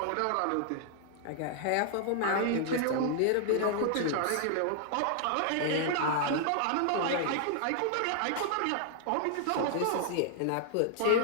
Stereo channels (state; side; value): different; both; correlation -0.01